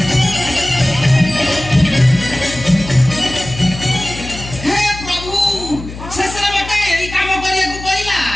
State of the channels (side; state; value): left; noise; hum, 12 dB below the sound